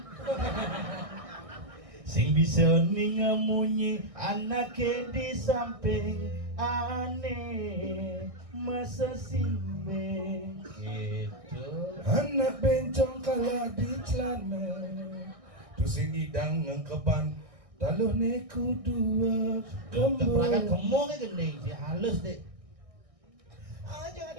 Sing bisa ningamunyi anake di samping aneh masa simbe gitu. Anak bencong kalah di celana tu sing hidang ngkeban taluh neku dua Perangkat kembali. gemuk kan gending sih halus deh. Ah, jangan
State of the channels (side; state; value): left; late; 1.6 ms